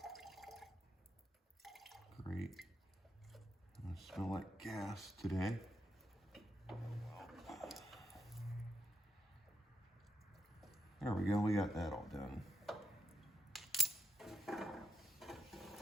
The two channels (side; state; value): both; normal; correlation 0.82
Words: Great. I smell like gas today. There we go, we got that all done.